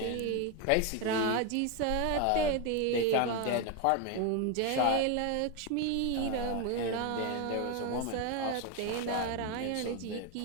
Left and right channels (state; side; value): different; both; correlation 0.02